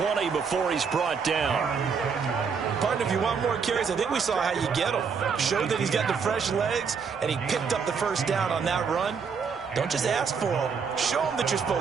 before he's brought down. Partner, if you want more carries, I think we saw how you get him. Showed that he's got the fresh legs, and he picked up the first down on that run. Don't just ask for him. Show him that you're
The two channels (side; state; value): left; quieter; 5.9 dB